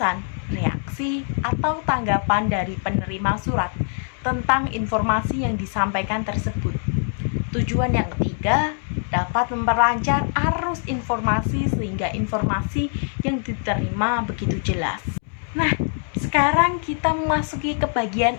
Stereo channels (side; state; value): right; silent; 63 dB below the other